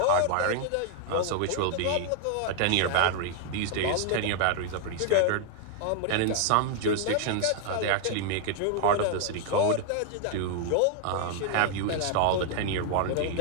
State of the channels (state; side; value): different; both; correlation 0.00